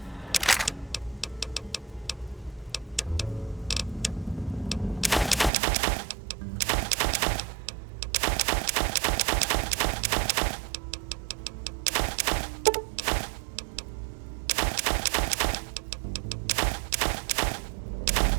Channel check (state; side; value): drops out; left; at 5.5 s